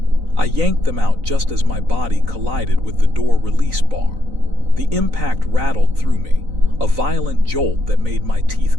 I yanked them out just as my body collided with the door release bar. The impact rattled through me, a violent jolt that made my teeth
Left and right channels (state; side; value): late; left; 3.9 ms